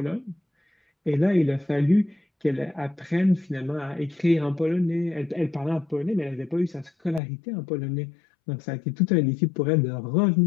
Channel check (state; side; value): drops out; right; at 7.2 s